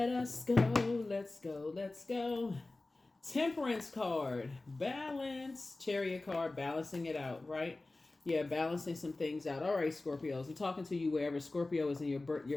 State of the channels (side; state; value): right; quieter; 3.1 dB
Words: us go. Let's go. Let's go. Temperance card, balance, chariot card, balancing it out, right? Yeah, balancing some things out. All right, Scorpios, I'm talking to you wherever Scorpio is in your